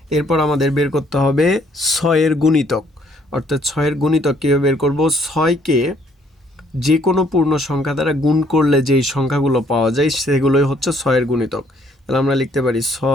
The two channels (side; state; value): both; normal; correlation 0.65